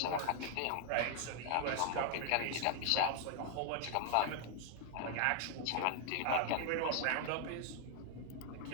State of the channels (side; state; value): both; different; correlation 0.00